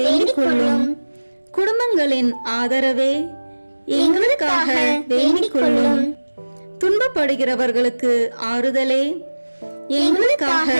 கொள்ளும். குடும்பங்களின் ஆதரவே, எங்களுக்காக வேண்டிக் கொள்ளும். துன்பப்படுகிறவர்களுக்கு ஆறுதலே, எங்களுக்காக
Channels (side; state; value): both; inverted; correlation -1.00